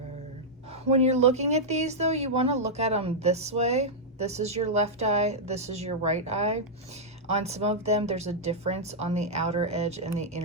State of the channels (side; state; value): both; normal; correlation -0.07